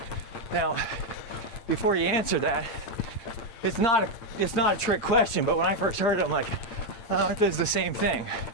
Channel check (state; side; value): late; right; 8.8 ms